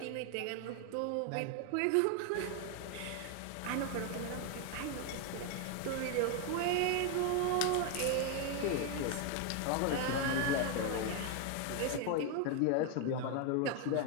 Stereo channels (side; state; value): both; different; correlation 0.01